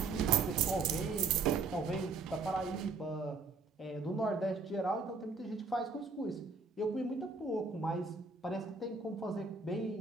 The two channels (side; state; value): left; quieter; 4.2 dB